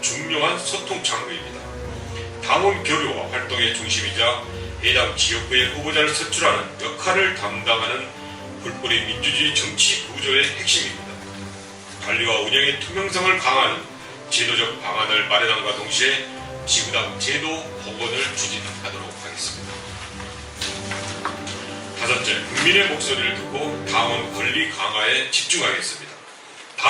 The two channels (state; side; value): identical; both; correlation 1.00